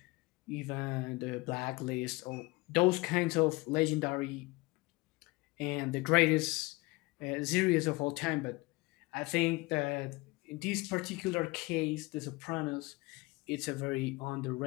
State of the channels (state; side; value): quieter; right; 23.6 dB